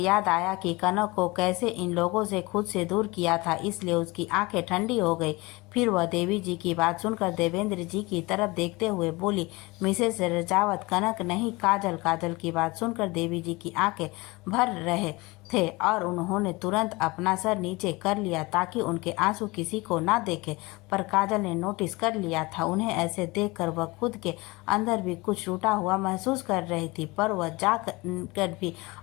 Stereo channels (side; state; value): right; quieter; 23.5 dB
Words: आया कि कनक को कैसे इन लोगों से खुद से दूर किया था, इसलिए उसकी आंखें ठंडी हो गई। फिर वह देवी जी की बात सुनकर देवेंद्र जी की तरफ देखते हुए बोली, मिसेस रजावत, कनक नहीं काजल। काजल की बात सुनकर देवी जी की आंखें भर रहे थे और उन्होंने तुरंत अपना सर नीचे कर लिया ताकि उनके आंसू किसी को ना देखे, पर काजल ने नोटिस कर लिया था। उन्हें ऐसे देखकर वह खुद के अंदर भी कुछ टूटा हुआ महसूस कर रही थी, पर वह जा कर भी